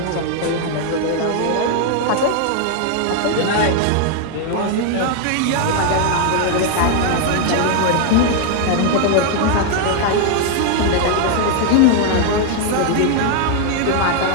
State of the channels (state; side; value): different; both; correlation 0.00